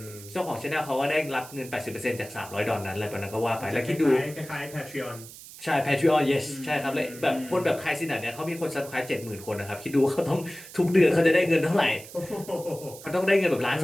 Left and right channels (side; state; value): right; noise; hiss, 16 dB below the sound